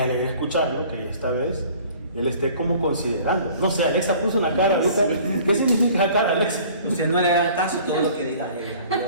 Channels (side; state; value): both; inverted; correlation -0.50